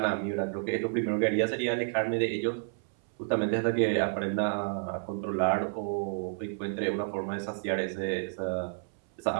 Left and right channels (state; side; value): silent; left; 58 dB below the other